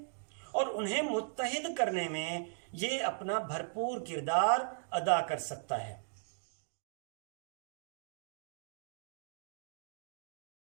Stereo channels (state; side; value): silent; left; digital silence